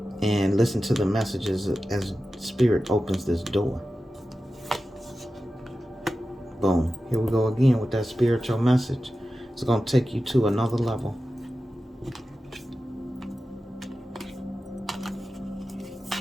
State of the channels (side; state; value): both; normal; correlation 0.93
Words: and listen to the messages as Spirit opens this door. Boom. Here we go again with that spiritual message. It's going to take you to another level.